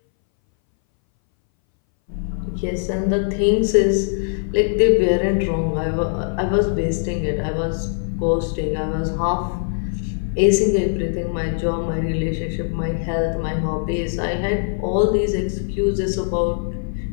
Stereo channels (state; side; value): silent; right; 61 dB below the other